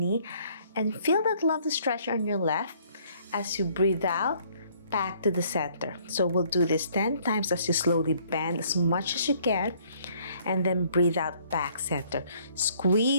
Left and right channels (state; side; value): inverted; both; correlation -0.62